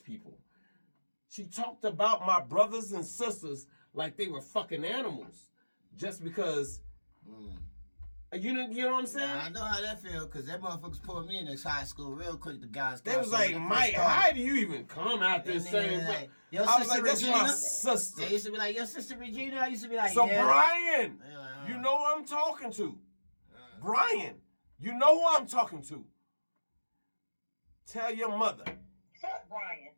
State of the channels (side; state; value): both; inverted; correlation -1.00